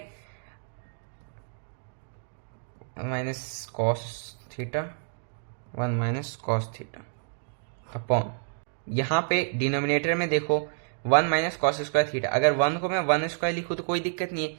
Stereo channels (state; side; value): silent; left; digital silence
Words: minus cos theta 1 minus cos theta upon, यहाँ पे डिनोमिनेटर में देखो 1 माइनस कॉस स्क्वायर थीटा, अगर 1 को मैं 1 स्क्वायर लिखूँ तो कोई दिक्कत नहीं है,